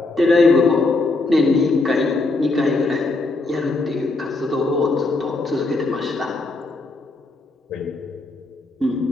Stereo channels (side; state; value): right; quieter; 3.2 dB